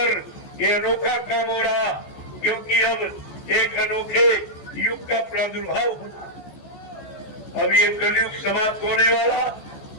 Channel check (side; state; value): right; late; 14 ms